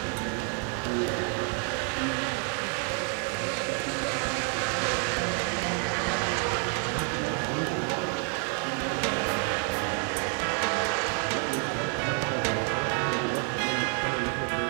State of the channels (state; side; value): quieter; left; 38.9 dB